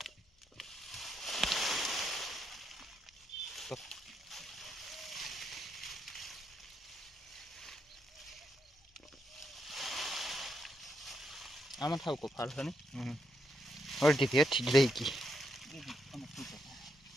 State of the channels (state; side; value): normal; both; correlation 0.80